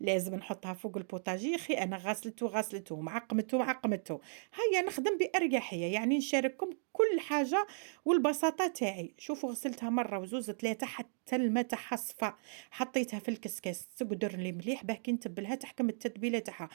نحطها فوق البوطاجي. خي انا غسلته معقمته. هيا نخدم باريحيه، يعني نشارككم كل حاجه والبساطه تاعي. شوفوا غسلتها مره وزوز ثلاثه حتى الماء تاعها صفى، حطيتها في الكسكاس تقدر لي مليح باه كي نتبلها تحكم التتبيله تاعها.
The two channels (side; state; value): left; silent; digital silence